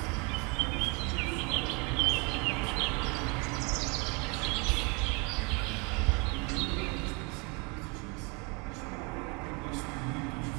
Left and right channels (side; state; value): left; quieter; 31.0 dB